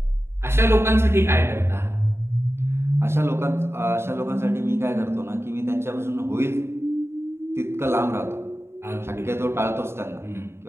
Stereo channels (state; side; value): late; left; 0.12 ms